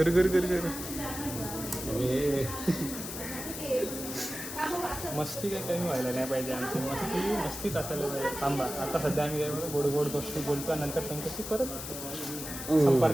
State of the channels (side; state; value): left; noise; hiss, 8 dB below the sound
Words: मस्ती काय कमी व्हायला नाही पाहिजे आमची. मस्तीच असायला पाहिजे. थांबा, आता सध्या आम्ही गोड गोष्टी बोलतो, नंतर तुमच्याशी परत